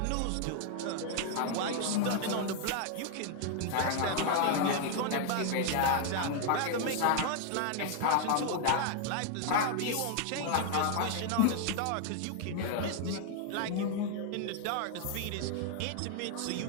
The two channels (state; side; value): different; both; correlation 0.00